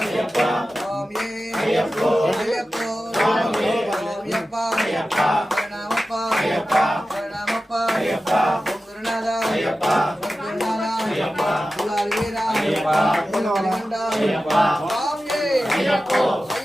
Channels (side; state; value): both; normal; correlation 0.94